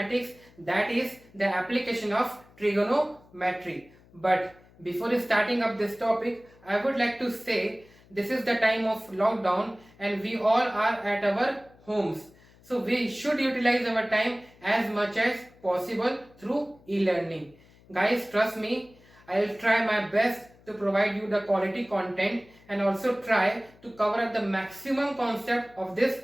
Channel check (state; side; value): noise; left; hum, 27 dB below the sound